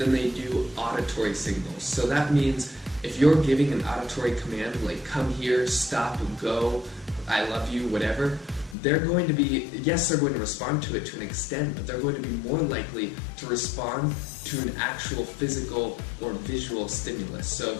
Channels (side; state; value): right; drops out; at 8.8 s